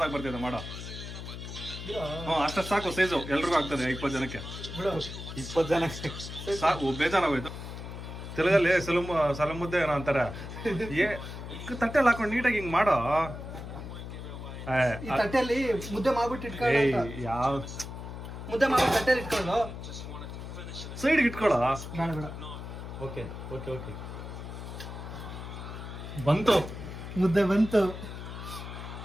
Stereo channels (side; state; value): left; noise; hum, 9 dB below the sound